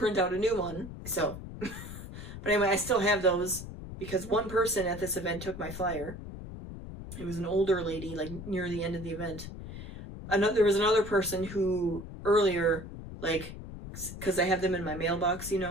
out a new one. So, but anyway, I still have those. because one person at this event took my flyer. It was an older lady, like near the end of the event. There was another person who earlier, like, because I have them in my mailbox, you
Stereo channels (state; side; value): noise; left; rumble, 11 dB below the sound